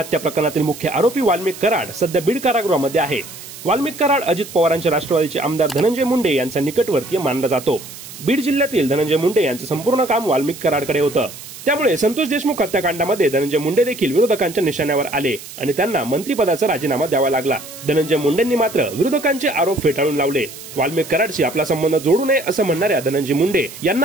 प्रकरणातील मुख्य आरोपी वाल्मिक कराड सध्या बीड कारागृहामध्ये आहे। वाल्मिक कराड अजित पवारांच्या राष्ट्रवादीचे आमदार धनंजय मुंडे यांचा निकटवर्तीय मानला जातो। बीड जिल्ह्यातील धनंजय मुंडे यांचं संपूर्ण काम वाल्मिक कराडकडे होतं। त्यामुळे संतोष देशमुख हत्याकांडामध्ये धनंजय मुंडे देखील विरोधकांच्या निशाण्यावर आले आणि त्यांना मंत्रिपदाचा राजीनामा द्यावा लागला। धनंजय मुंडेंनी मात्र विरोधकांचे आरोप फेटाळून लावले। वाल्मिक कराडशी आपला संबंध जोडू नये असं म्हणणाऱ्या धनंजय मुंडे यांना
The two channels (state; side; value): noise; right; hiss, 14 dB below the sound